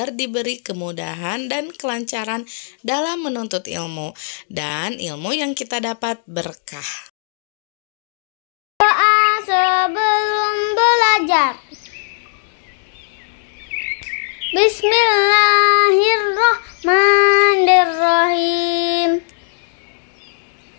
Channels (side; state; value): right; silent; digital silence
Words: diberi kemudahan dan kelancaran dalam menuntut ilmu, dan ilmu yang kita dapat berkah. Doa sebelum belajar. Bismillahirrahmanirrahim.